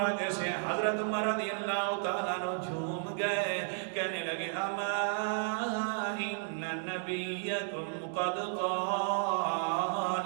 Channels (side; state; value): left; silent; 56 dB below the other